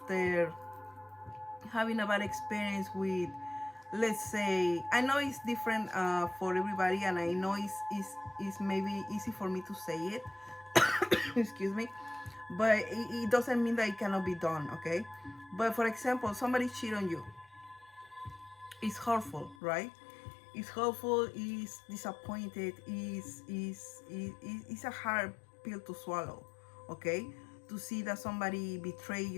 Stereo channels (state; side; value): drops out; right; at 19.6 s